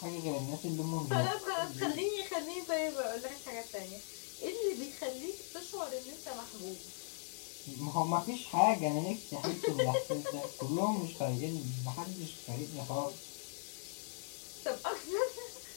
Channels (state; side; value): silent; right; digital silence